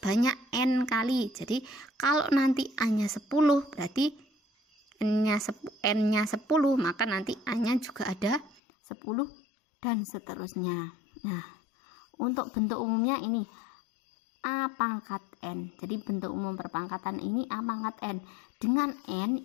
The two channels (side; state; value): right; drops out; at 8.6 s